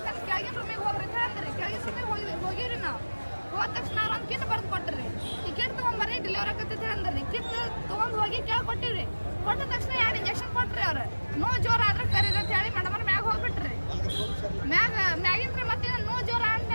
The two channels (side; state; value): both; inverted; correlation -1.00